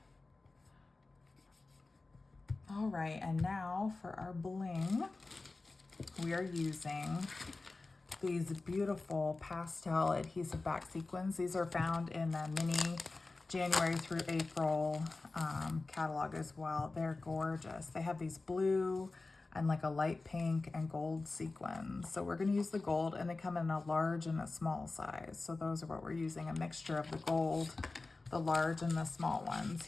All right, and now for our bling, we are using these beautiful pastel adhesive back sequins. These are found in the mini January through April catalog as well. They're gorgeous. They have these blue and like a light pink and gold sequins. So we're gonna use the gold, and they come in a large and a small size. So those are what we're using, a mixture of the gold, the large, and the small ones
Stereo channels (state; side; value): quieter; right; 3.5 dB